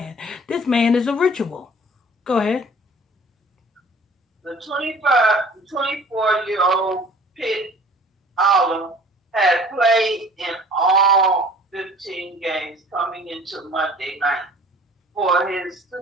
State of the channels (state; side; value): normal; both; correlation 0.49